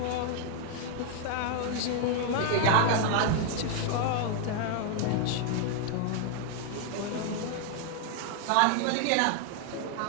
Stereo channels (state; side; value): different; both; correlation 0.00